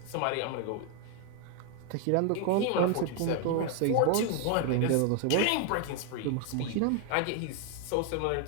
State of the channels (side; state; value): both; different; correlation 0.01